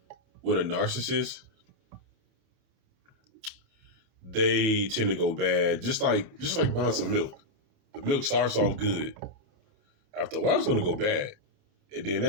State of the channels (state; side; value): late; left; 28 ms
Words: with a narcissist, they tend to go bad, just like buying some milk. The milk starts off good. After a while, it's gonna go bad. And then